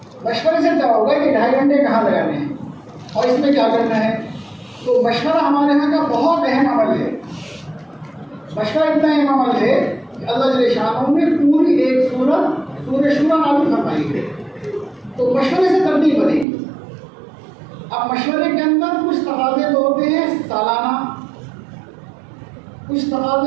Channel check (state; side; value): drops out; left; at 16.4 s